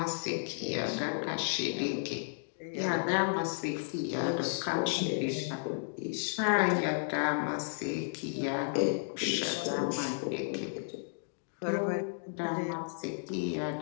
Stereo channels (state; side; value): silent; right; digital silence